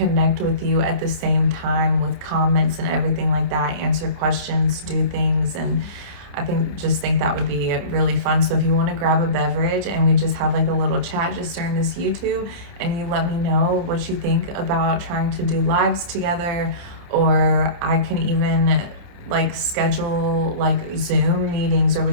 with you at the same time with comments and everything like that, answer questions, do things, and I think that would be really fun. So if you want to grab a beverage and we just have like a little chat just during this YouTube, and you let me know what you think about trying to do lives together, or I can even like schedule like Zoom meetings, or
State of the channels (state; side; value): late; left; 28 ms